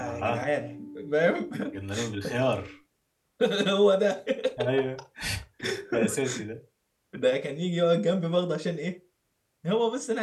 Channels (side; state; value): both; identical; correlation 1.00